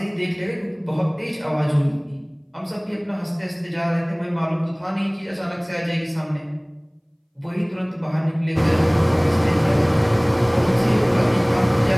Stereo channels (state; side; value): identical; both; correlation 1.00